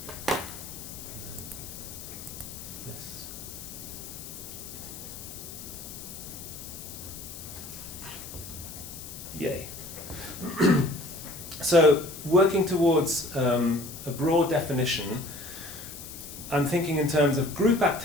this. Yay. So, working towards a broad definition, I'm thinking in terms of group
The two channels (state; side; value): noise; left; hiss, 12 dB below the sound